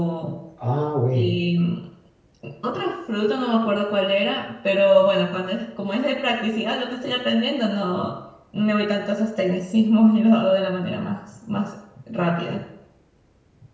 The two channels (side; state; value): both; identical; correlation 1.00